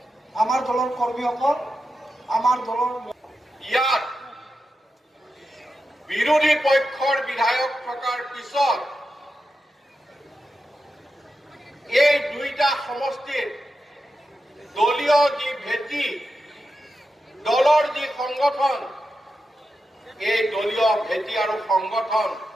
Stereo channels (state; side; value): normal; both; correlation 0.89